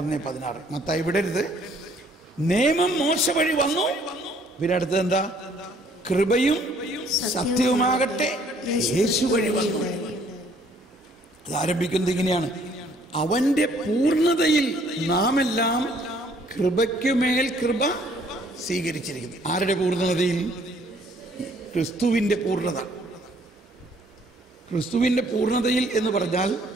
മത്തായി വിടരുത്. നിയമം മോശ വഴി വന്നു, പിന്നെ അടുത്തത് എന്താ? കൃപയും സത്യവുമാകട്ടെ യേശു വഴി വന്നു. അത് ആരംഭിക്കുന്നത് ഇങ്ങനെയാണ്, അവന്റെ പൂർണ്ണതയിൽ നാം എല്ലാം കൃപയ്ക്കുമേൽ കൃപ സ്വീകരിച്ചിരിക്കുന്നു. ആരുടെ പൂർണ്ണതയിൽ? ക്രിസ്തുവിന്റെ പൂർണ്ണത. ക്രിസ്തുവിന്റെ പൂർണ്ണതയിൽ എന്ന് പറഞ്ഞാൽ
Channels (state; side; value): normal; both; correlation 0.62